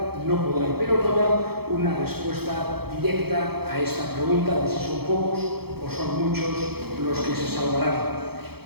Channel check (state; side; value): late; left; 0.96 ms